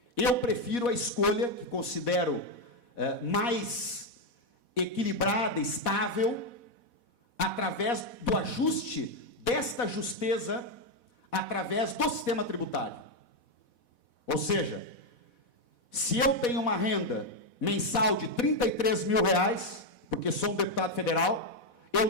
Eu prefiro a escolha, que considero mais equilibrada, estável, através do ajuste desta justeza, através do sistema tributário. Ou seja, se eu tenho uma renda mensal de R$33 mil, porque sou um deputado federal, eu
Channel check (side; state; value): right; late; 4.1 ms